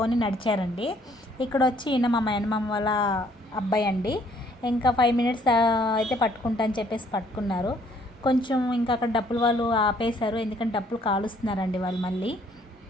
నడిచారండి. ఇక్కడ వచ్చి ఈయన మా మేనమామ వాళ్ళ అబ్బాయి అండి. ఇంకా 5 మినిట్స్ అయితే పట్టుకుంటా అని చెప్పేసి పట్టుకున్నారు. కొంచెం ఇంకా అక్కడ డప్పులు వాళ్ళు ఆపేశారు, ఎందుకంటే డప్పులు కాలుస్తున్నారండి వాళ్ళు మళ్ళీ.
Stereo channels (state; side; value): normal; both; correlation 0.63